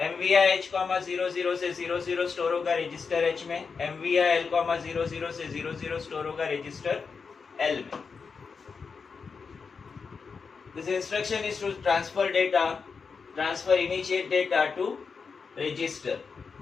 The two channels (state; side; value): quieter; right; 5.3 dB